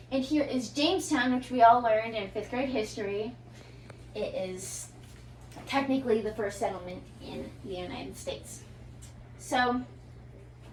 And here is Jamestown, which we all learned in 5th grade history. It is technically the first settlement in the United States. So,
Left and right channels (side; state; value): both; identical; correlation 1.00